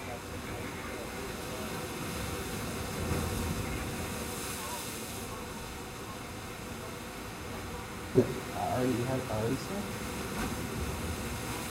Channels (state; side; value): identical; both; correlation 1.00